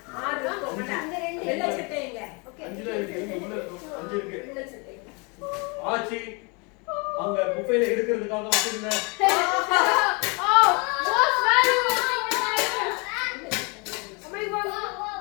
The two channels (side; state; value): right; quieter; 31.4 dB